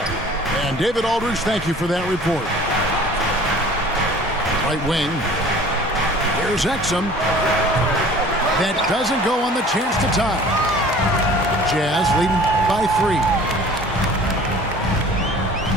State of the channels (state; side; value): normal; both; correlation 0.47